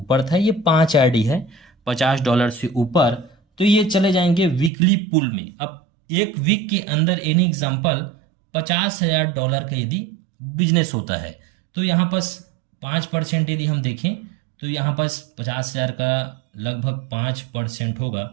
था, ये 5 आईडी है $50 से ऊपर, तो ये चले जाएंगे वीकली पुल में। अब एक वीक के अंदर एनी एग्जांपल $50,000 का यदि बिजनेस होता है, तो यहाँ पास 5% यदि हम देखें तो यहाँ पास 50,000 का लगभग 5% होगा।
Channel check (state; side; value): drops out; left; at 4.7 s